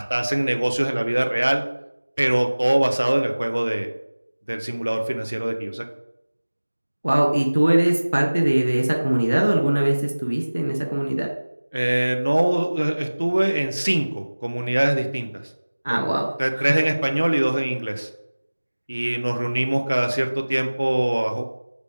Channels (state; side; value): inverted; both; correlation -1.00